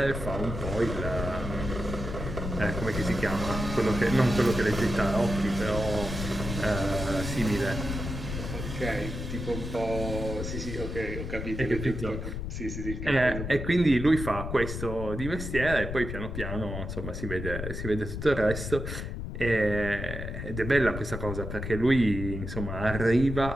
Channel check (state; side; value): noise; left; rumble, 5 dB below the sound